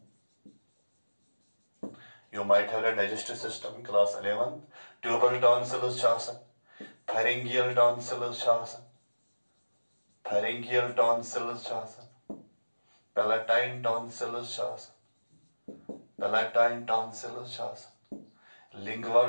You might have read digestive system in class 11. Tubal tonsils pharyngeal tonsils palatine tonsils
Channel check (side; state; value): both; inverted; correlation -1.00